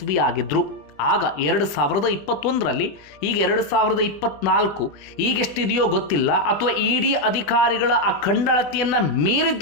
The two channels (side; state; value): right; late; 20 ms